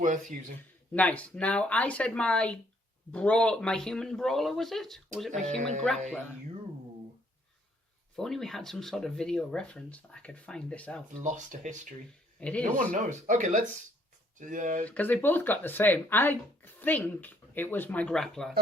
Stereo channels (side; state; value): both; normal; correlation 0.66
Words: using. Nice. Now, I said my human brawler, was it? Or was it my human grappler? If only we had some sort of video reference that I could find this out. Lost to history. It is. No one knows. Okay, let's... Because they both got the same. I think it was my grappler.